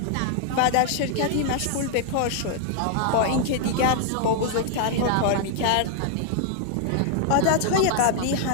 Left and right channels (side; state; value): both; different; correlation 0.00